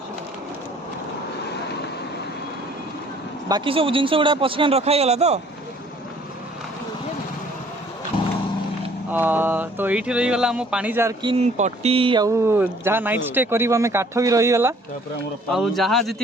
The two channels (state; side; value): normal; both; correlation 0.58